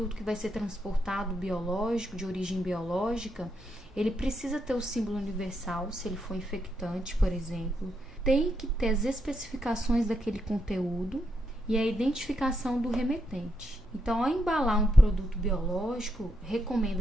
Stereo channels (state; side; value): normal; both; correlation 0.81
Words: que vai ser transportado biológico, de origem biológica, ele precisa ter o símbolo universal, se ele for infectante, por exemplo. Tem que ter as especificações daquele conteúdo e a identificação do remetente. Então, ao embalar um produto biológico,